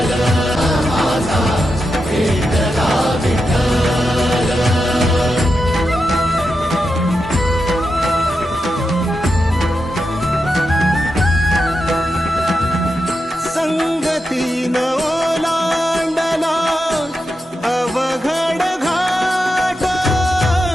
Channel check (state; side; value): normal; both; correlation 0.88